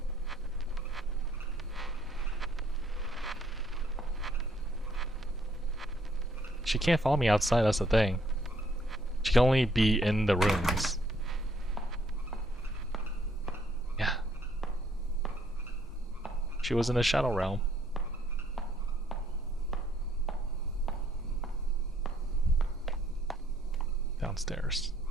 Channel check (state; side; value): normal; both; correlation 0.67